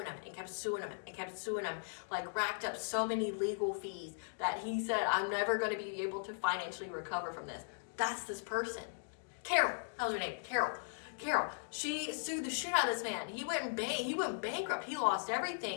him and kept suing him and kept suing him, like racked up so many legal fees that he said, I'm never going to be able to financially recover from this. That's this person. Carol, that was her name, Carol. She sued the shit out of this man. He went bankrupt. He lost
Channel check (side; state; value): right; silent; digital silence